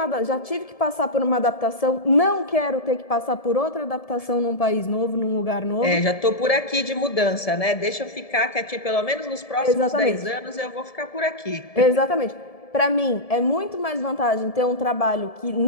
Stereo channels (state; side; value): late; right; 1.7 ms